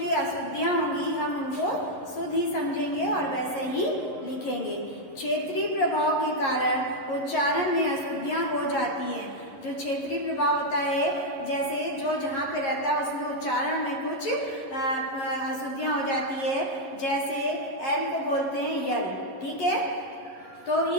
अशुद्धियाँ होंगी हम उनको शुद्ध ही समझेंगे और वैसे ही लिखेंगे। क्षेत्रीय प्रभाव के कारण उच्चारण में अशुद्धियाँ हो जाती हैं। जो क्षेत्रीय प्रभाव होता है, जैसे जो जहाँ पे रहता है उसमें उच्चारण में कुछ अशुद्धियाँ हो जाती है। जैसे एल को बोलते हैं यल, ठीक है। तो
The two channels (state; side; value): late; right; 11 ms